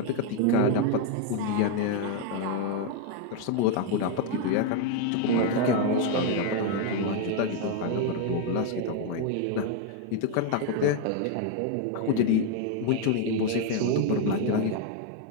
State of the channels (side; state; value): both; different; correlation 0.01